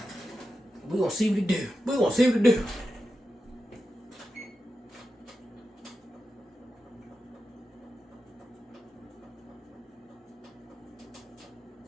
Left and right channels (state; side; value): normal; both; correlation 0.90